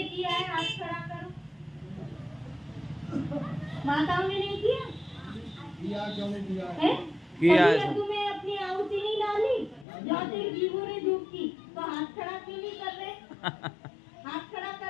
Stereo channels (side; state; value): right; drops out; at 9.9 s